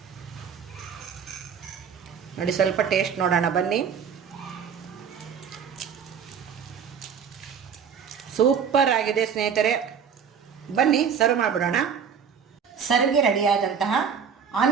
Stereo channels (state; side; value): quieter; left; 7.1 dB